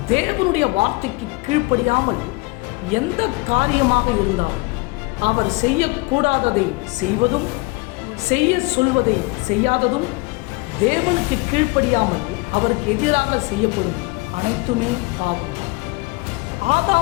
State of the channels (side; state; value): right; quieter; 25.6 dB